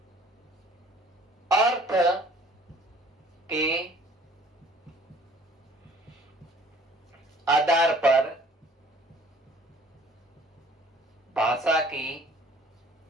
अर्थ के आधार पर भाषा की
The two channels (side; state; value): both; normal; correlation 0.54